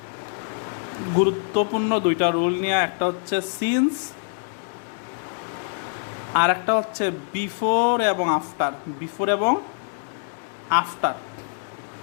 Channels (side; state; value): right; silent; digital silence